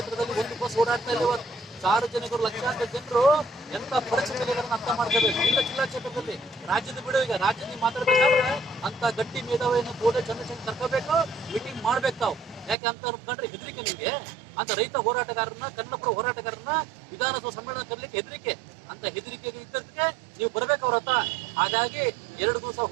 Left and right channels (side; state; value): left; drops out; at 12.8 s